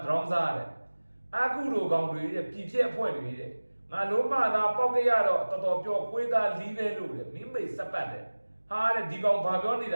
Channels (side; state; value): both; inverted; correlation -1.00